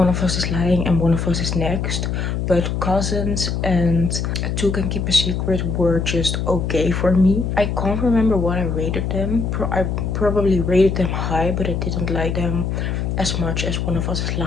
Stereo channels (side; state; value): left; noise; hum, 1 dB below the sound